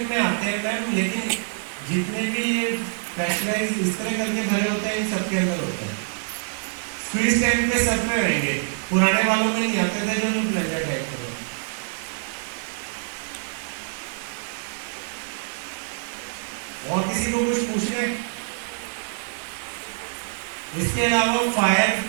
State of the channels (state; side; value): silent; left; digital silence